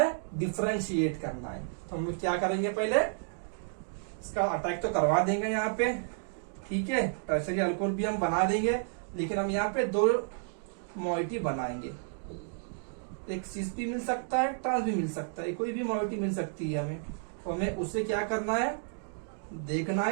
डिफरेंशिएट करना है। तो हम लोग क्या करेंगे, पहले इसका अटैक तो करवा देंगे यहाँ पे, ठीक है, टर्शरी अल्कोहल भी हम बना देंगे, लेकिन हम यहाँ पे दो मॉइटी बनाएंगे, एक सिस भी मिल सकता है, ट्रांस भी मिल सकता है, कोई भी मॉइटी मिल सकती है हमें। तो हमें उसे क्या करना है, देखना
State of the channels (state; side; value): silent; left; digital silence